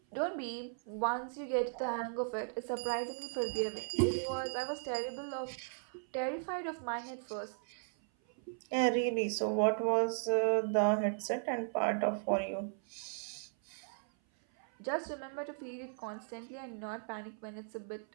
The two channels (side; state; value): left; silent; 53 dB below the other